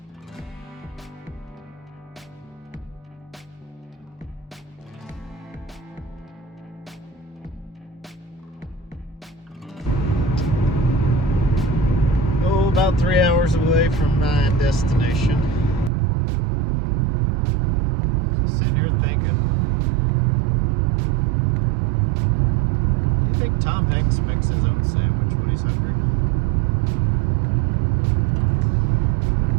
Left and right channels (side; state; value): left; drops out; at 15.9 s